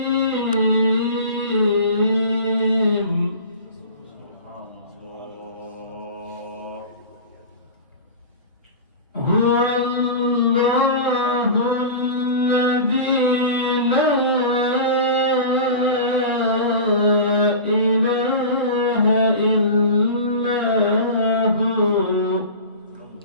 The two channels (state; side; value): inverted; both; correlation -0.32